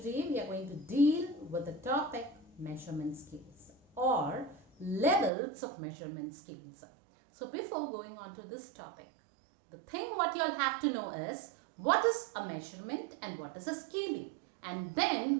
we are going to deal with the topic measurement scales or levels of measurement scales. So before going on to this topic, the thing what you all have to know is what is a measurement and what is a scaling, and then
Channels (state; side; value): drops out; left; at 5.3 s